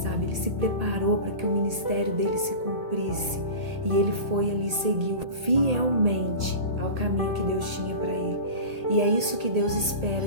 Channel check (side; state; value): left; late; 1.8 ms